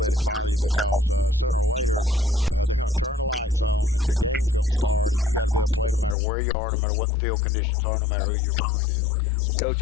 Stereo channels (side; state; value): right; drops out; at 6.2 s